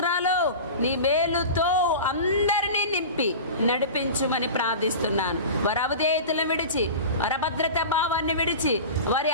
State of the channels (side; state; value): both; inverted; correlation -0.32